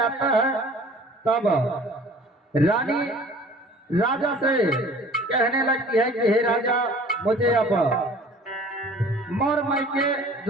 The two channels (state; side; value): normal; both; correlation 0.48